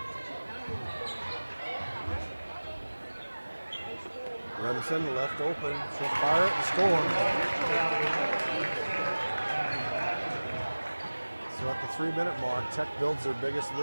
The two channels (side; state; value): both; inverted; correlation -1.00